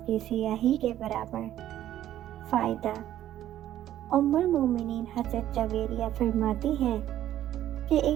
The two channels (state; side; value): quieter; left; 12.3 dB